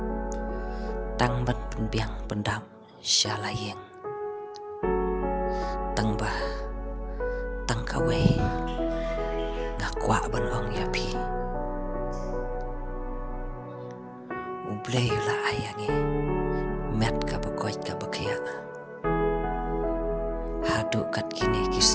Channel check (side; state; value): both; identical; correlation 1.00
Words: tang ban penbiang pendam syalaying tang bah tang kawe ngakwa ban ong yapi ublay la ayangi met ka bakoy ka bakya hadu kat kini